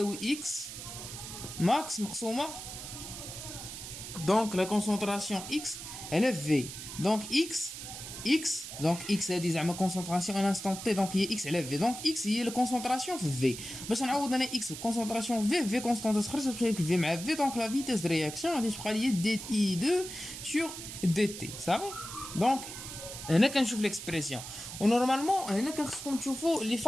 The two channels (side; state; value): right; noise; hiss, 10 dB below the sound